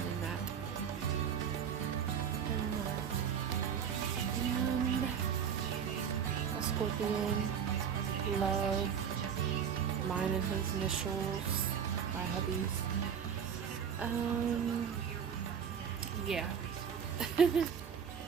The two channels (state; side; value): quieter; left; 7.7 dB